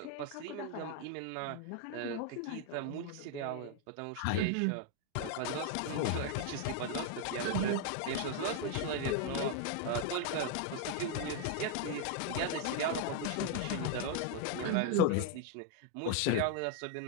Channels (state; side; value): different; both; correlation 0.00